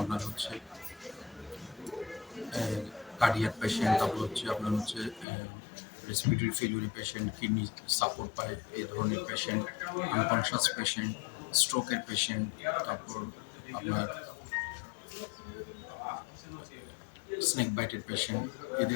আপনার হচ্ছে কার্ডিয়াক পেশেন্ট, তারপর হচ্ছে আপনার হচ্ছে রেসপিরেটরি ফেলিউরি পেশেন্ট, কিডনি সাপোর্ট পায় এই ধরনের পেশেন্ট, আনকনশাস পেশেন্ট, স্ট্রোকের পেশেন্ট, তারপর আপনার স্নেক বাইটের পেশেন্ট,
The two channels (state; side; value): drops out; right; at 5.2 s